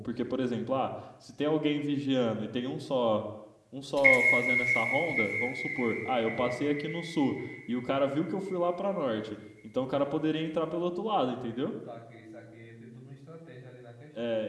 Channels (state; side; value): identical; both; correlation 1.00